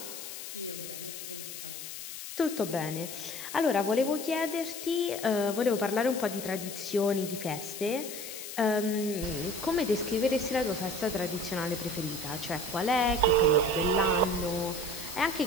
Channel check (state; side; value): noise; left; hiss, 9 dB below the sound